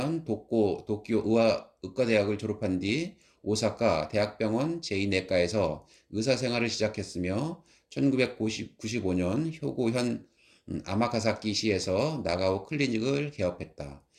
도쿄 의과대학을 졸업한 뒤 오사카 대학병원 제2내과에서 의사 생활을 시작했으며 1995년 효고현 아마카사키시에서 나가오 클리닉을 개업했다.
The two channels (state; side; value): identical; both; correlation 1.00